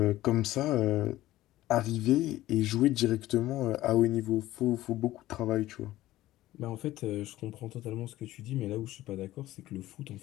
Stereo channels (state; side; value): quieter; right; 15.7 dB